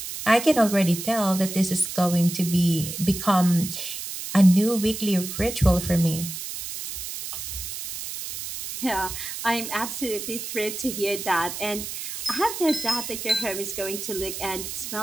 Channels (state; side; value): noise; right; hiss, 7 dB below the sound